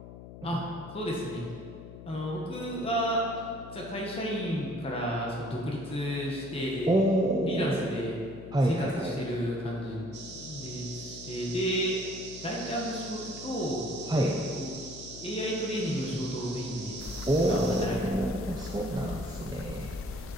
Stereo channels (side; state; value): left; noise; hum, 14 dB below the sound